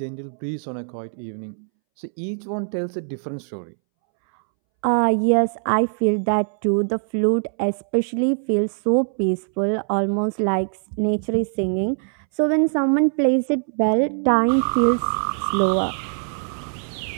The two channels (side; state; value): left; silent; 64 dB below the other